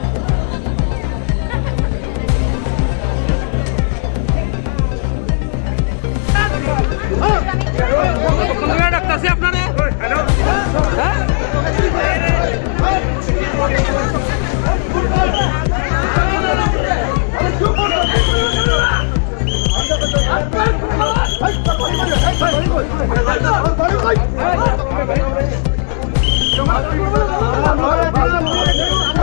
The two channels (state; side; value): silent; right; 56 dB below the other